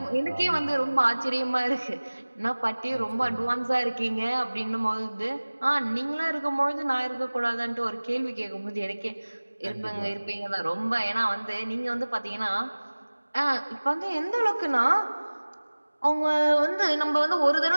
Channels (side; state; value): both; inverted; correlation -1.00